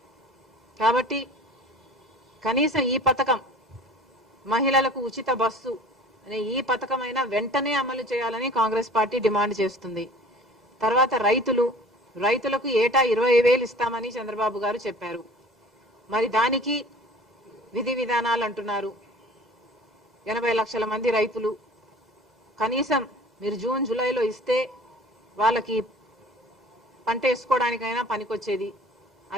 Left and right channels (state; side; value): normal; both; correlation 0.44